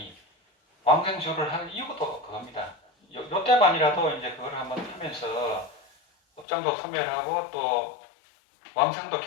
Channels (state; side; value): drops out; right; at 6.5 s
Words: 왕생주를 하는 이유도 그겁니다. 요 때만이라도 이제 그걸 한번 하면서 업장도 소멸하고 또 왕생도